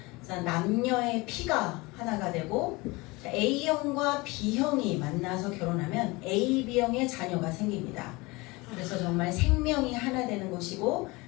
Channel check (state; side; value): quieter; right; 23.8 dB